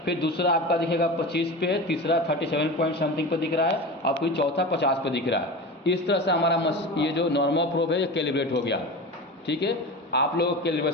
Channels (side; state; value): both; normal; correlation 0.28